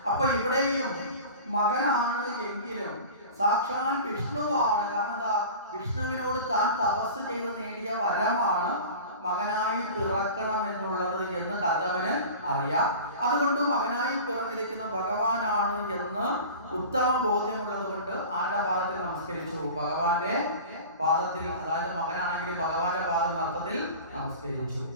അപ്പൊ ഇവിടെയും മകനാണ് എങ്കിലും സാക്ഷാൽ വിഷ്ണുവാണ്. കാരണം എന്താ? വിഷ്ണുവിനോട് താൻ തപസ് ചെയ്ത് നേടിയ വരമാണ് മകനായി പിറക്കണം എന്നുള്ളത് എന്ന് കർദമന് അറിയാം. അതുകൊണ്ട് മകനായി പിറന്നിരിക്കുന്ന ഭഗവാനാണ് എന്ന് ഉത്തമ ബോധ്യമുള്ളത് കൊണ്ട് ആരുടെ പാദത്തിൽ നമസ്കരിച്ചു? ഭഗവാന്റെ പാദത്തിൽ. അതായത് മകനാണെങ്കിലും ഭഗവാന്റെ പാദം അർത്ഥത്തിൽ നമസ്കരിച്ചു.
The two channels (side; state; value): both; inverted; correlation -0.36